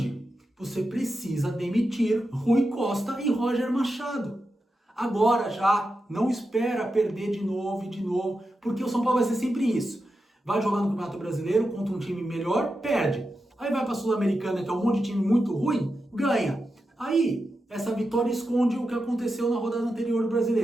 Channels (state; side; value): normal; both; correlation 0.89